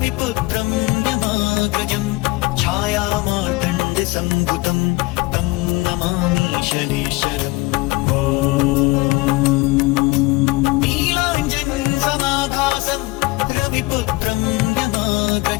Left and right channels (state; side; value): quieter; right; 22.6 dB